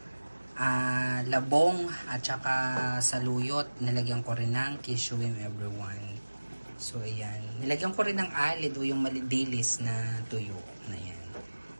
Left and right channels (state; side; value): inverted; both; correlation -1.00